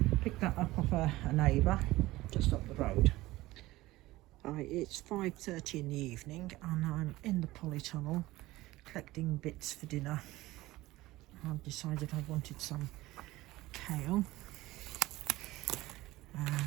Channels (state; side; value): quieter; left; 18.2 dB